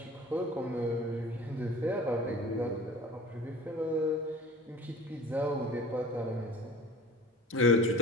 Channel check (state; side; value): normal; both; correlation 0.41